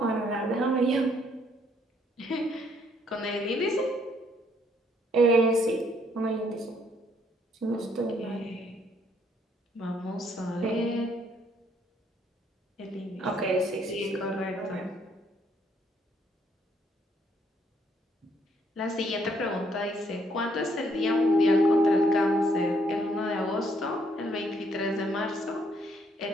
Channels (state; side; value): normal; both; correlation 0.69